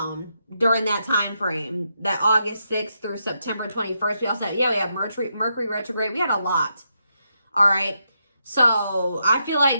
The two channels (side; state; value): both; inverted; correlation -0.82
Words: during that time frame, that August 6th through September 21st. We also had, we had Mercury retrograde. We had a lot. All right. So I feel